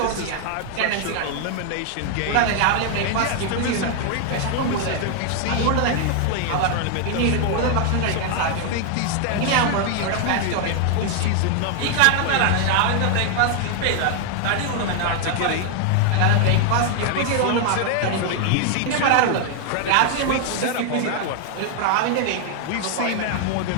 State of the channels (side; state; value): both; different; correlation 0.00